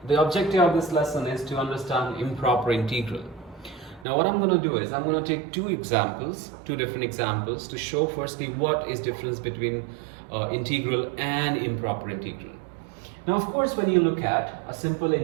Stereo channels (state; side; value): drops out; left; at 4.0 s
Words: the objective of this lesson is to understand improper integral. Now what I'm going to do is I'm going to take two different examples to show firstly what is difference between integral and improper integral. Now of course when you look at a simple